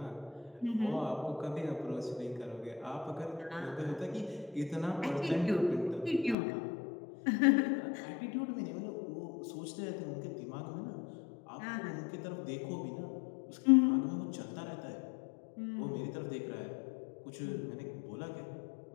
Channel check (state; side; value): drops out; right; at 6.4 s